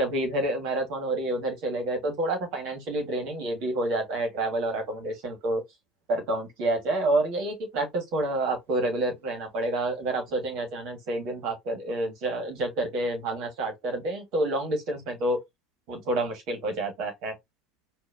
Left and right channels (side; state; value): both; normal; correlation 0.45